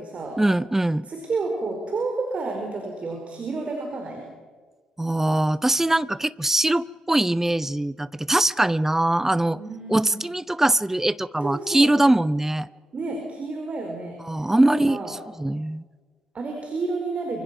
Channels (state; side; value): normal; both; correlation 0.93